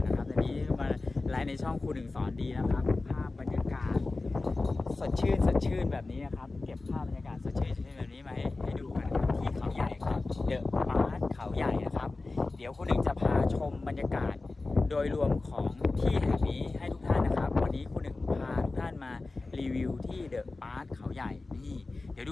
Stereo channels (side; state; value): right; quieter; 3.4 dB